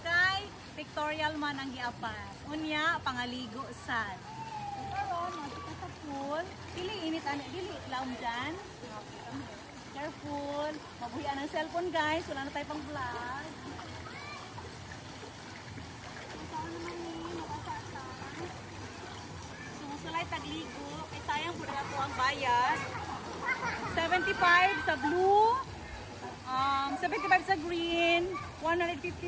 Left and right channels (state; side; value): identical; both; correlation 1.00